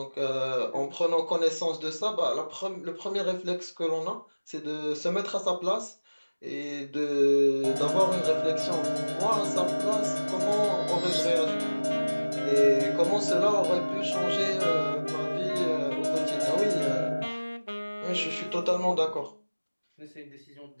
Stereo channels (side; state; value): both; inverted; correlation -1.00